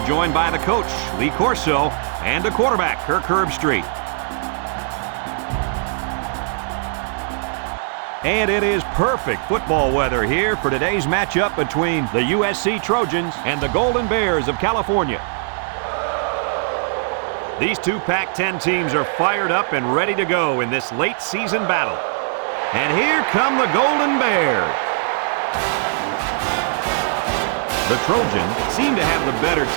joined by the coach, Lee Corso, and the quarterback, Kirk Herbstreit. And it is perfect football weather here for today's matchup between the USC Trojans and the Golden Bears of California. These two Pac-10 teams are fired up and ready to go in this late season battle. And here come the Golden Bears. The Trojans seem to have the better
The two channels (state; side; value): silent; left; 60 dB below the other